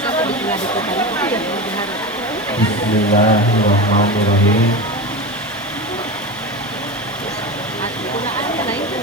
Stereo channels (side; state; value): both; normal; correlation 0.24